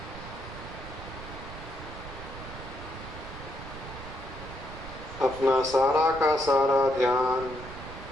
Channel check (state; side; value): noise; right; rumble, 12 dB below the sound